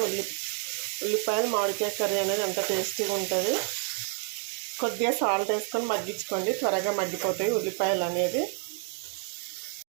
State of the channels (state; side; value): quieter; left; 36.5 dB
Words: ఉల్లిపాయలు మామిడికాయ కర్రీ అనేది అంత టేస్టీగా ఉంటుంది. కొద్దిగా సాల్ట్ వేసుకొని మగ్గించుకోండి, త్వరగా మగ్గిపోతాయి ఉల్లిపాయలు అనేది.